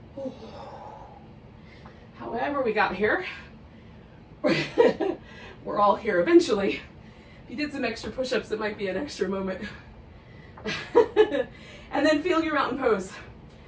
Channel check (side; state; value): both; identical; correlation 1.00